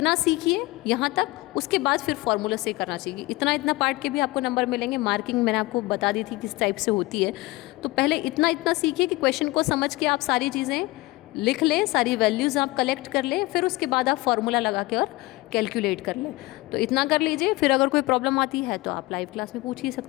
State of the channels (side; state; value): right; quieter; 21.2 dB